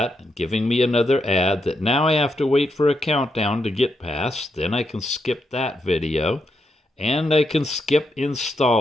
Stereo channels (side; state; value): both; normal; correlation 0.82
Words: giving me another ad that now I have to wait for a countdown to get past. Then I can skip that video, and I can skip